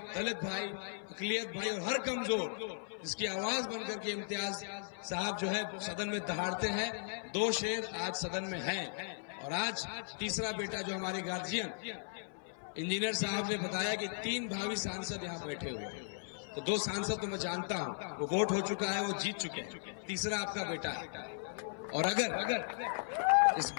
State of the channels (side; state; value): right; silent; 53 dB below the other